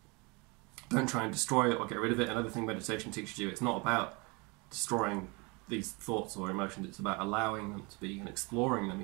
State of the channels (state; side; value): quieter; left; 28.6 dB